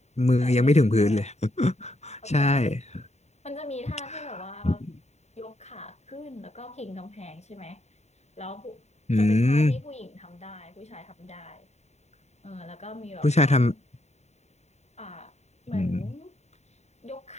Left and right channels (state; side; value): late; right; 0.32 ms